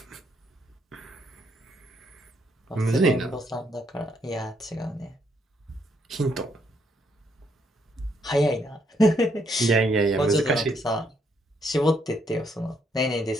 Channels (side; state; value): both; normal; correlation 0.73